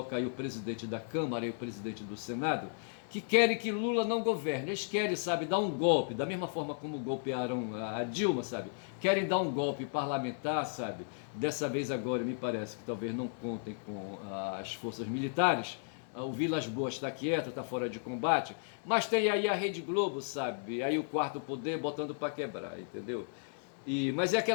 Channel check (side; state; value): right; silent; digital silence